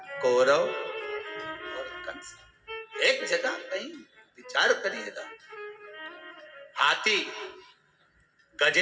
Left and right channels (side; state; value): both; identical; correlation 1.00